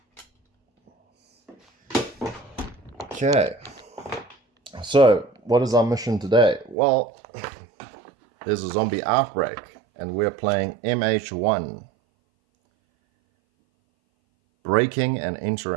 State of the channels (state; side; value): drops out; left; at 6.8 s